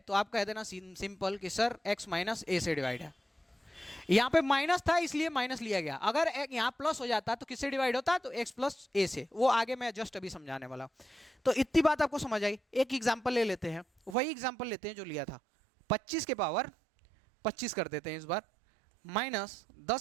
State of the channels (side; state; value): left; drops out; at 14.2 s